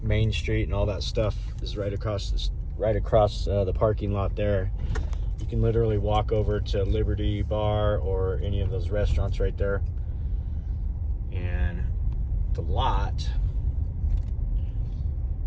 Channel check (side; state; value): both; identical; correlation 1.00